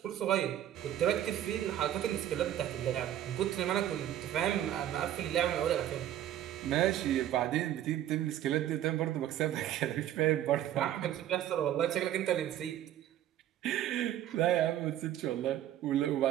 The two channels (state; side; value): quieter; left; 11.8 dB